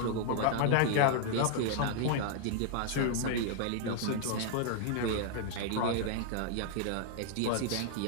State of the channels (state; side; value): different; both; correlation 0.00